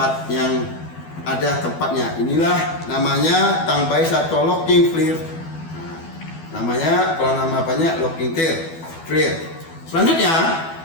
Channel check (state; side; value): late; right; 12 ms